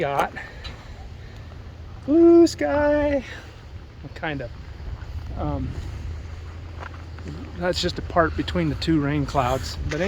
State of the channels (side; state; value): both; identical; correlation 1.00